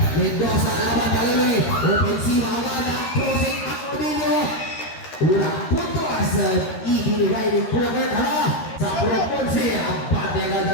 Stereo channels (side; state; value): right; late; 13 ms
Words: Mendoza laban kali ofensiva agad ang crossing at Odilio. Unang puntos ibinigay ni Kulakert sa Proponsi. Ang bate agad